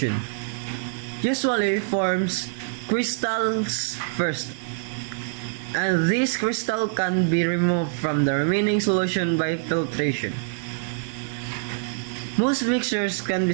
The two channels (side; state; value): left; silent; 62 dB below the other